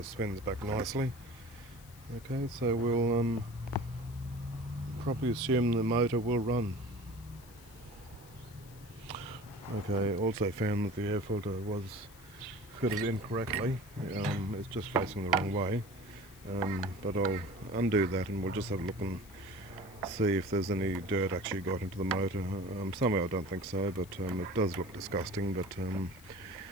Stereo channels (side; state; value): left; noise; hiss, 22 dB below the sound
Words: spins back nicely. Okay, so we'll probably assume the motor will run. Okay, also found that the air filter was fitted incorrectly. It's just facing the wrong way. But I'll undo that and we'll just have a look and see if there's any dirt actually got into the motor. Somehow I don't think so, but it does look disgusting, but